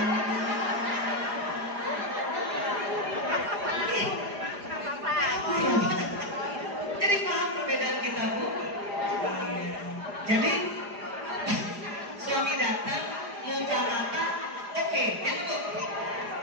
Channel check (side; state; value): left; late; 4.9 ms